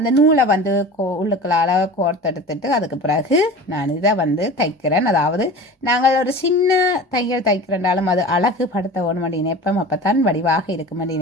நூலை வந்து உள்ளுக்களால் கோர்த்தெடுத்துட்டு அதுக்கு பிறகு நான் இதை வந்து தைக்கிறேன். அதாவது நாங்கள் ஒரு சின்ன தையல் தைக்கிறனாலும் அது அழகு படுத்த வேணும் அப்படி நினைப்போம், அப்போ தான் வடிவாக இருக்கும் அப்படி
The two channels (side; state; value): both; normal; correlation 0.36